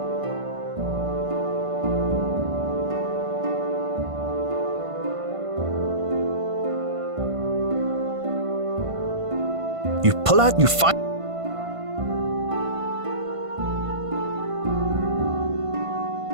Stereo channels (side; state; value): left; late; 1.5 ms